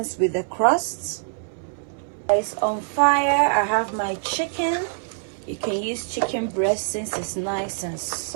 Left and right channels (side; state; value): left; silent; 60 dB below the other